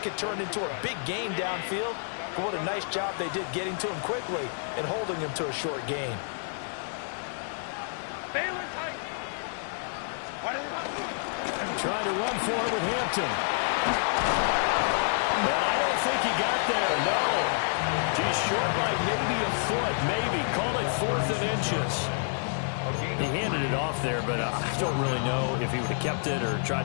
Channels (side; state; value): right; silent; digital silence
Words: can turn into a big gain downfield. But what a nice job they did getting to him quickly and holding him to a short gain. Trying to run for it with Hampton. And I don't think he got there, no. He's short by maybe a foot, maybe. Call it 4th and inches. He handed it off there, but I don't really know if he would have kept it or tried